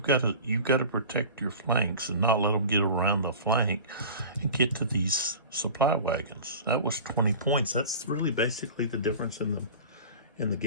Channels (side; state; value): both; inverted; correlation -0.37